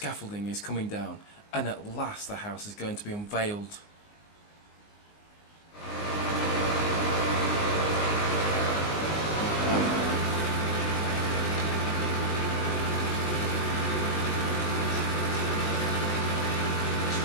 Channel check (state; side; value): late; right; 19 ms